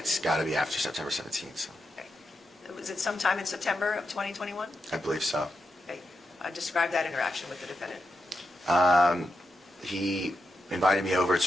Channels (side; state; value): both; normal; correlation 0.86